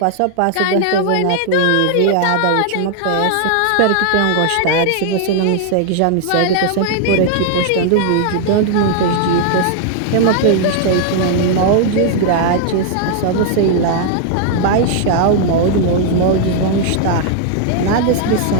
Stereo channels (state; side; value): different; both; correlation 0.00